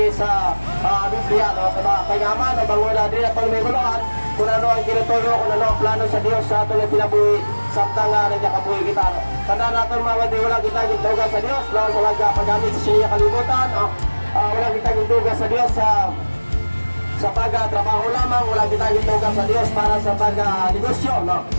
sa Biblia, no? Kaya man, bango na din atong may guluhan, kung ano ang kinutuyo, kung ano ang plano sa Diyos sa aton na pinabuhi, samtang nagkakabuhi kita. Tanda natin mga kapatid, wala kita gintugan sa Diyos, no? Sa paggamit sa siya kalibutan, no? Wala kita gintugan sa Diyos sa pag-trabaho lamang, wala kita gintugan sa Diyos para sa pag-negosyo, no?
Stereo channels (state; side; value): inverted; both; correlation -1.00